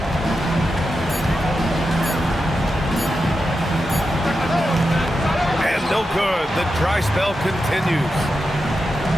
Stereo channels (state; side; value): normal; both; correlation 0.89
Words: And no good. The dry spell continues.